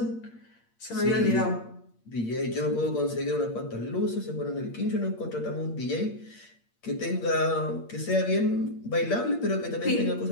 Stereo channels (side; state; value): right; late; 8.7 ms